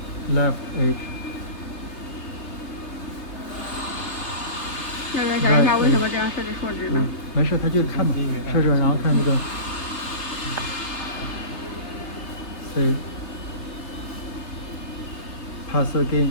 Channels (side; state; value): right; late; 3.3 ms